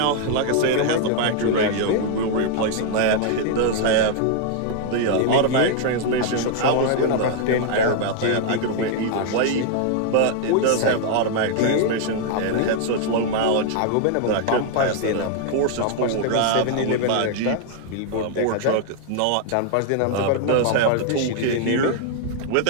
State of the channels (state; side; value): different; both; correlation 0.00